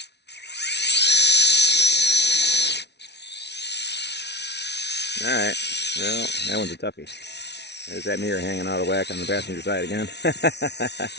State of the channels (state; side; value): late; right; 0.50 ms